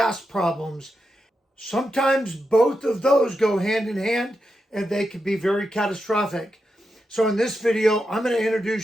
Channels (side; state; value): both; normal; correlation 0.87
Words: problems. Sometimes both of those go hand in hand, and they can be very catastrophic. So in this video, I'm going to